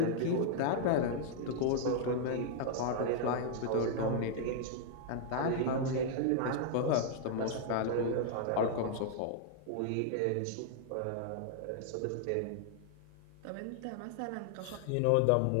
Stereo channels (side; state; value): both; different; correlation -0.01